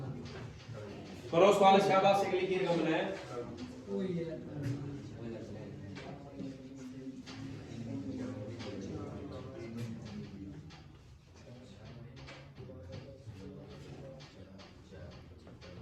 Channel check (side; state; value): both; identical; correlation 1.00